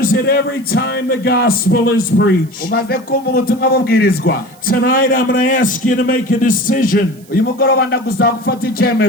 it every time the gospel is preached. Tonight I'm going to ask you to make a decision.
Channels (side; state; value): right; noise; hiss, 26 dB below the sound